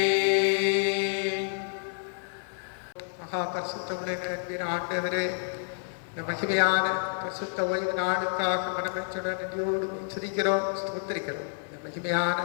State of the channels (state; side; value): silent; right; digital silence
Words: மகா பரிசுத்தமுள்ள அன்பின் ஆண்டவரே, இந்த மகிமையான பரிசுத்த ஓய்வு நாளுக்காக மனமெச்சுடன் நன்றியோடு துதிக்கிறோம், ஸ்தோத்திரிக்கிறோம். இந்த மகிமையான